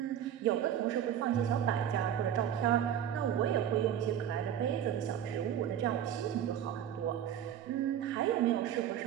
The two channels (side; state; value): left; quieter; 10.1 dB